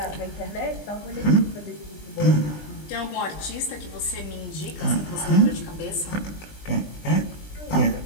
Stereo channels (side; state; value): right; late; 20 ms